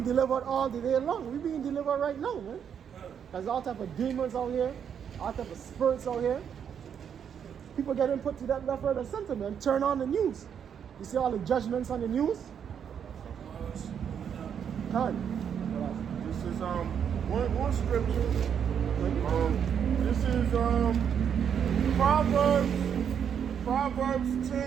delivered all the day long. We're being delivered right now, man. There's all type of demons out here, all type of spirits out here. People getting put to that left, right, and center, man. Turn on the news. You see all the judgments on the news? This is one scripture. This is Proverbs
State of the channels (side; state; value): left; quieter; 8.0 dB